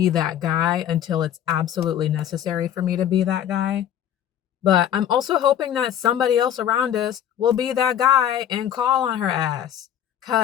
that guy until it's absolutely necessary for me to be that guy. But I'm also hoping that somebody else around us will be that guy and call on her ass.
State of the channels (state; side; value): quieter; right; 10.3 dB